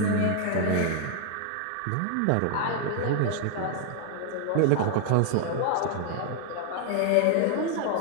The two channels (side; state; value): both; different; correlation 0.00